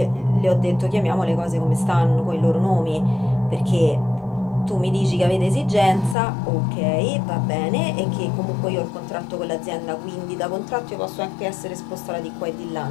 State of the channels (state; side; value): drops out; right; at 6.2 s